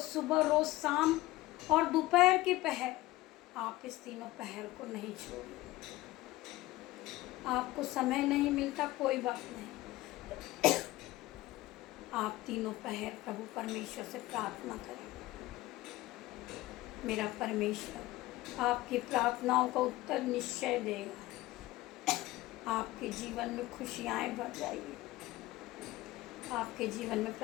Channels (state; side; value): quieter; right; 18.1 dB